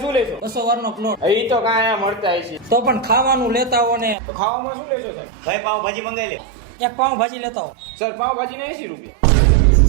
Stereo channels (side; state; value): left; drops out; at 4.2 s